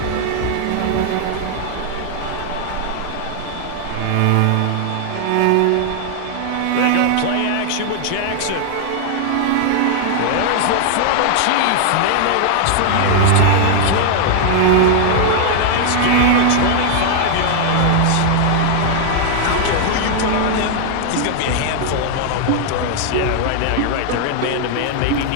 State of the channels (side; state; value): both; different; correlation 0.00